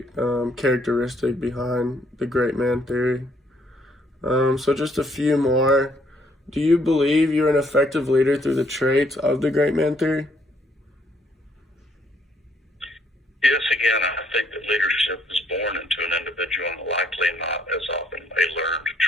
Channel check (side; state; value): both; normal; correlation 0.68